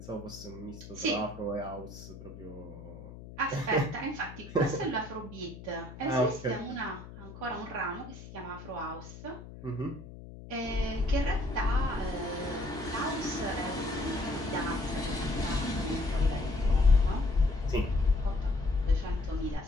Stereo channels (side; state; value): left; noise; hum, 14 dB below the sound